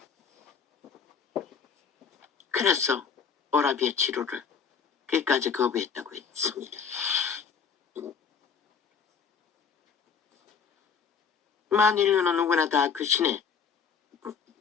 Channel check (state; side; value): quieter; right; 6.3 dB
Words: 그래서 오라비의 치료를 끝까지 거부했다고 했습니다. 만인류는 누구나 다 그 신의